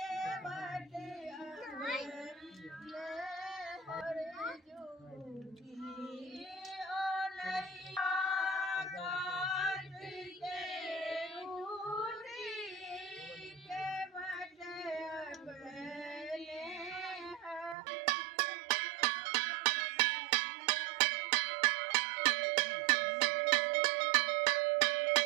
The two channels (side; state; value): left; drops out; at 17.8 s